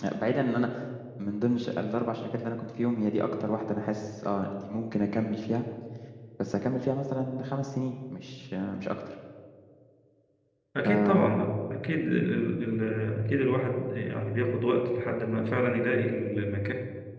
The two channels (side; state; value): both; identical; correlation 1.00